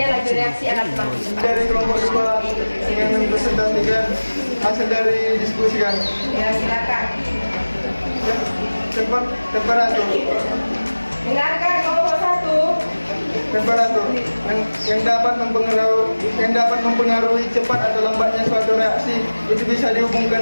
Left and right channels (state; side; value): inverted; both; correlation -1.00